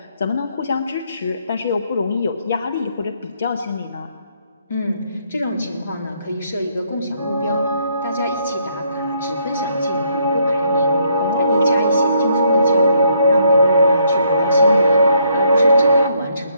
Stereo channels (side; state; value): both; inverted; correlation -0.71